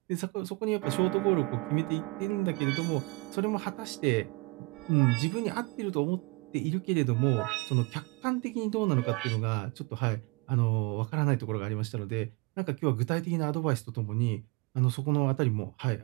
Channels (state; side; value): quieter; left; 27.0 dB